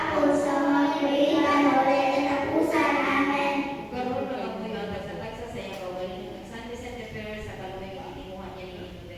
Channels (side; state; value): both; identical; correlation 1.00